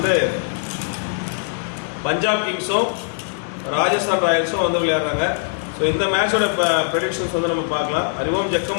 பஞ்சாப் கிங்ஸும் ராஜஸ்தான் ராயல்ஸும் வந்து விளையாடுறாங்க. ஸோ இந்த மேட்சோட ப்ரெடிக்ஷன்ஸ் வந்து நம்ம பார்க்கலாம். அறிவோம்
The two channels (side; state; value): right; silent; digital silence